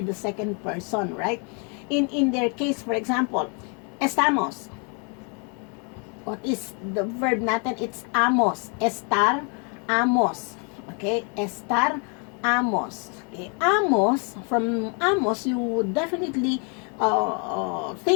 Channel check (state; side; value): quieter; right; 36.3 dB